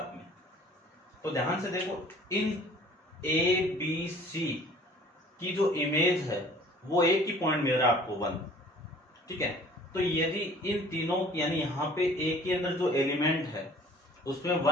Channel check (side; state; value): both; normal; correlation 0.51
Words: में। तो ध्यान से देखो, इन a b c की जो इमेज है वो एक ही पॉइंट मिल रहा है आपको 1। ठीक है, तो यदि इन तीनों यानी यहाँ पे a के अंदर जो एलिमेंट है उसमें